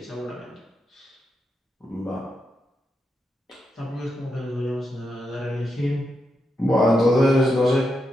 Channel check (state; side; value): normal; both; correlation 0.85